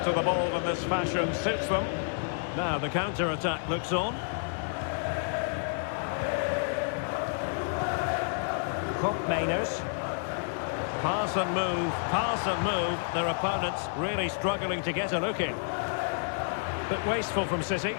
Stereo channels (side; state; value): right; silent; digital silence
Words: to the ball in this fashion suits them. Now the counter-attack looks on. Mainers. Pass and move, pass and move. Their opponents really struggling to get a look in. Bit wasteful from City.